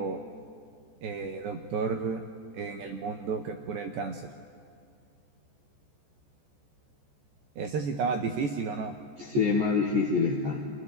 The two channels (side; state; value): left; late; 14 ms